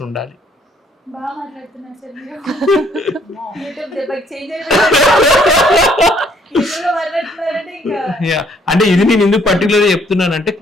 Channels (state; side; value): normal; both; correlation 0.65